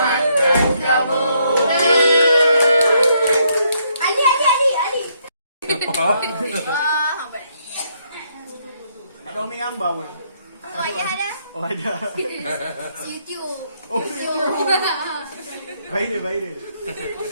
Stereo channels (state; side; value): inverted; both; correlation -0.72